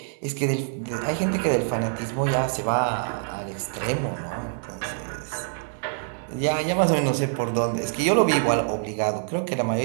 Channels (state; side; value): silent; left; digital silence